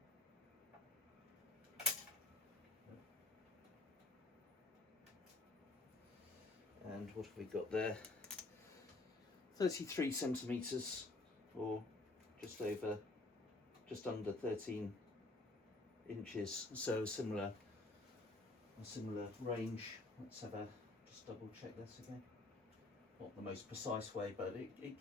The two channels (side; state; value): right; quieter; 3.0 dB